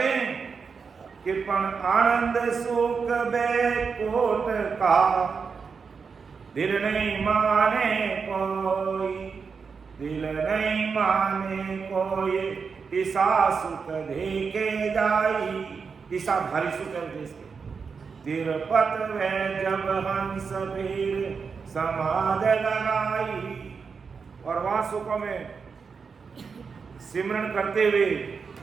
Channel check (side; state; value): left; quieter; 5.5 dB